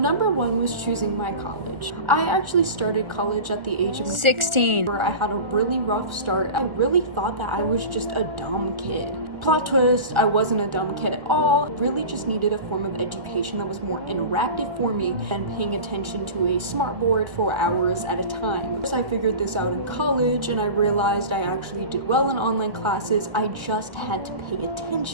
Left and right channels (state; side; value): late; left; 1.4 ms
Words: 1 was choosing my college. I actually started college at the age of 16. Where I had a really rough start. I really thought that I was just a dumb kid. Plot twist, I wasn't a dumb kid at all. Really just needed a form of education that was more interactive for me than paying attention to a smartboard for hours at a time. So I figured this out in college and I realized I actually did well in online classes. I just had to pay